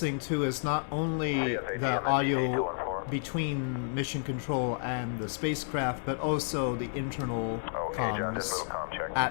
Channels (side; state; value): right; silent; digital silence